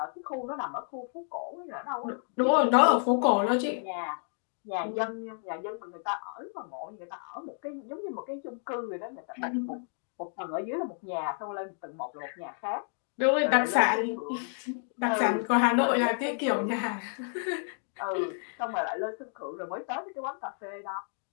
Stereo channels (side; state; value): right; silent; 57 dB below the other